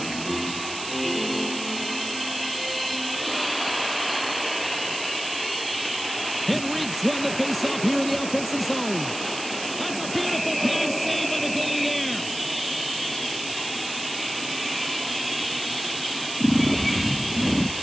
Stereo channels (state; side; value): noise; right; hiss, 8 dB below the sound